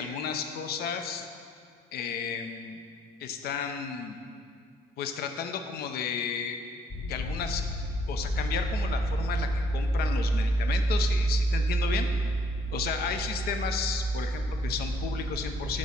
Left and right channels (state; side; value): normal; both; correlation 0.66